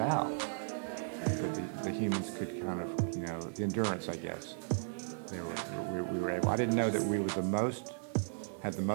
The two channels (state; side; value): silent; left; digital silence